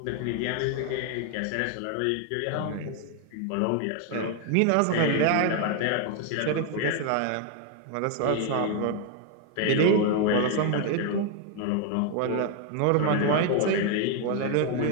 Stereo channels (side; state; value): both; different; correlation 0.01